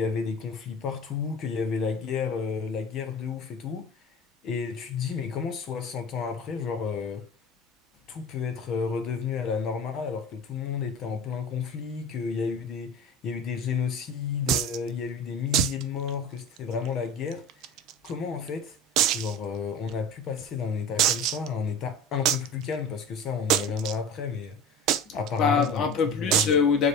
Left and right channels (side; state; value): both; normal; correlation 0.34